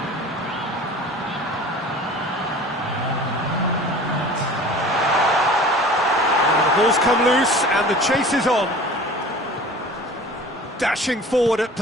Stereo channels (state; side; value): normal; both; correlation 0.42